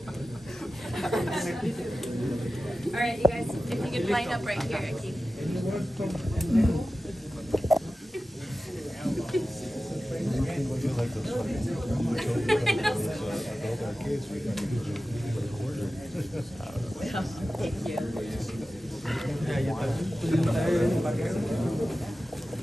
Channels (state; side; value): normal; both; correlation 0.94